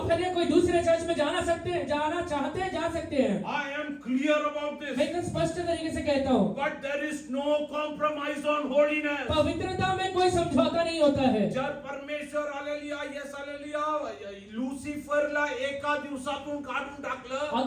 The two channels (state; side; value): identical; both; correlation 1.00